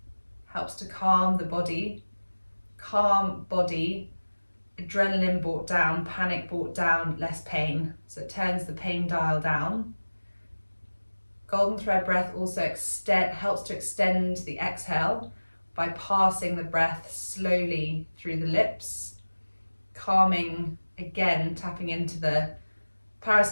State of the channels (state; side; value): inverted; both; correlation -1.00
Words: helps to calm the body, adrenaline brought down, panic brought down, less pain. So it turns the pain dial down. Golden thread breath also helps to extend the exhale by passing the breath slowly through the lips, calming, again, tapping into the